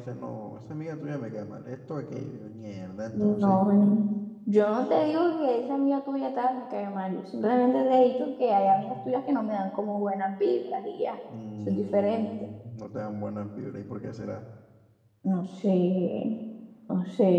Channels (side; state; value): both; identical; correlation 1.00